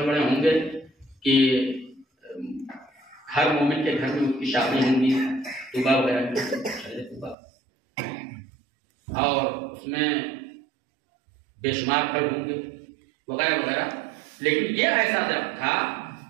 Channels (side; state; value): left; drops out; at 7.4 s